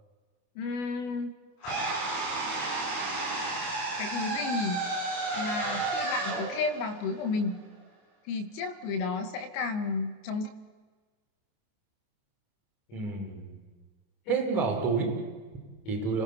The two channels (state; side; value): late; right; 28 ms